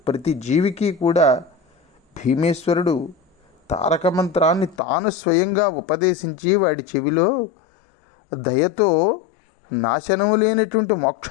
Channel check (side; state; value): right; drops out; at 4.8 s